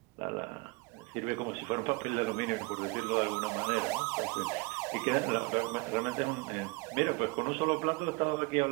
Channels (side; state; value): left; quieter; 26.6 dB